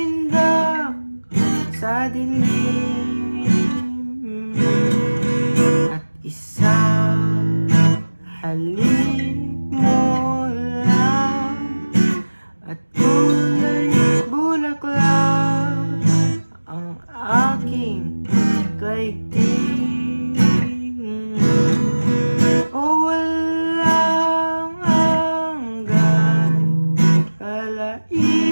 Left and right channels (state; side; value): inverted; both; correlation -1.00